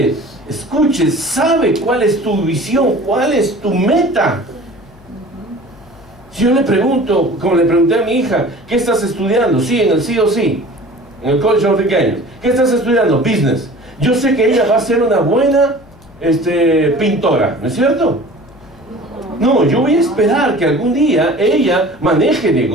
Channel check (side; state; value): left; noise; hum, 25 dB below the sound